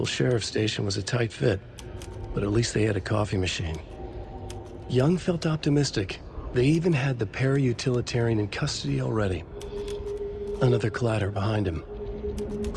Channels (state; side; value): identical; both; correlation 1.00